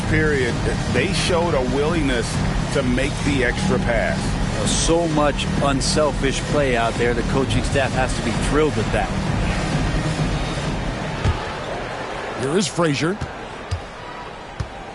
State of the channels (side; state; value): both; identical; correlation 1.00